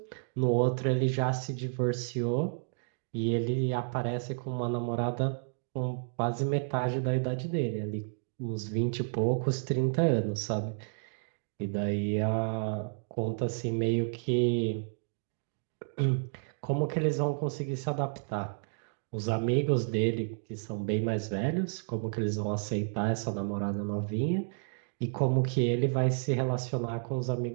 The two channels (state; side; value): silent; left; digital silence